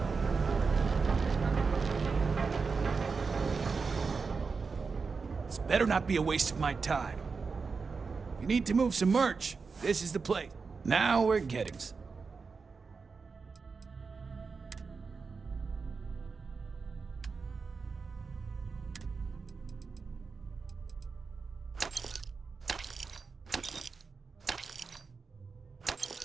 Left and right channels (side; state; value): left; quieter; 4.8 dB